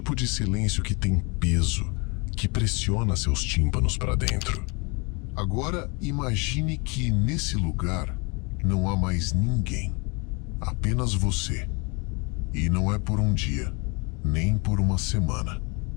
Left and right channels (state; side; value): quieter; right; 30.2 dB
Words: de silêncio que tem peso, que pressiona seus tímpanos para dentro. Agora, imagine que nesse lugar não há mais ninguém. Apenas você. E não é por um dia, nem por uma semana.